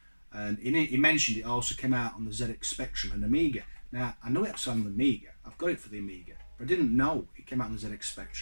and he mentioned it also came out on the ZX Spectrum and Amiga. Now, I know it's on the Amiga. I've got it for the Amiga, but I didn't know it came out on the ZX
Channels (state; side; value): inverted; both; correlation -1.00